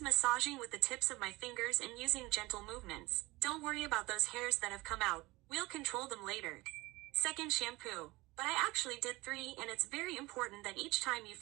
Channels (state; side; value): quieter; left; 21.3 dB